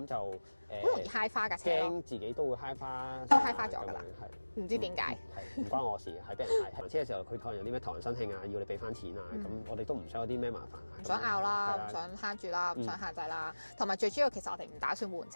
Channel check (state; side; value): inverted; both; correlation -1.00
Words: 就好容易揩花架車咯，驚自己都會揩花，都揩花咗㗎啦，唔知點解，係唔關我事，係俾人揩。還車嘅時候，佢可能有啲咩頭人申慶啊，要你俾翻錢啊，咁我哋都唔想有啲咩麻煩啊，唔想拗啦，唔想慳住啦，唔想限制啦，同埋最主要其實我哋唔打算換